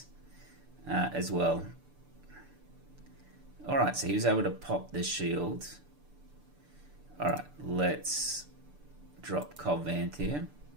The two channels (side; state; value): left; late; 6.8 ms